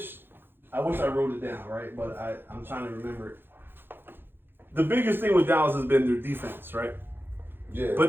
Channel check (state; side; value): late; left; 0.10 ms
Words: I wrote it down, right? But I'm trying to remember it. The biggest thing with Dallas has been their defense, right? Yeah.